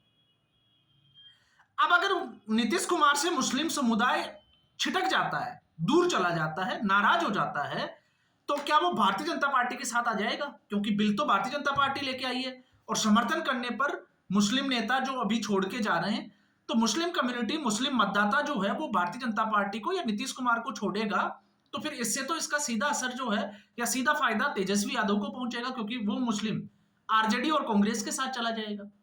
अब अगर नीतीश कुमार से मुस्लिम समुदाय छिटक जाता है, दूर चला जाता है, नाराज हो जाता है, तो क्या वो भारतीय जनता पार्टी के साथ आ जाएगा? क्योंकि बिल तो भारतीय जनता पार्टी लेके आई है और समर्थन करने पर मुस्लिम नेता जो अभी छोड़ के जा रहे हैं, तो मुस्लिम कम्युनिटी, मुस्लिम मतदाता जो है वो भारतीय जनता पार्टी को या नीतीश कुमार को छोड़ेगा। तो फिर इससे तो इसका सीधा असर जो है या सीधा फायदा तेजस्वी यादव को पहुंचेगा, क्योंकि वो मुस्लिम आरजेडी और कांग्रेस के साथ चला जाएगा।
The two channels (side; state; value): both; identical; correlation 1.00